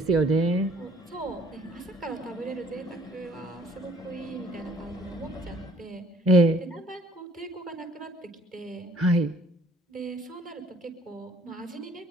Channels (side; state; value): both; normal; correlation 0.58